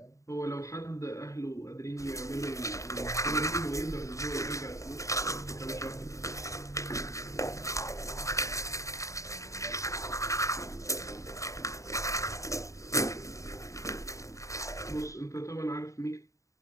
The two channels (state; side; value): late; right; 0.15 ms